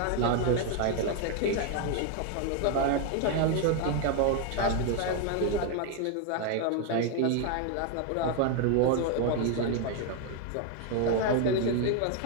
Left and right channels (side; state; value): both; different; correlation 0.01